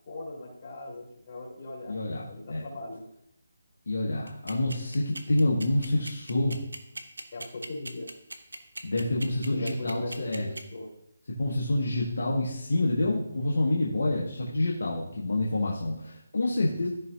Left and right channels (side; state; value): both; inverted; correlation -0.91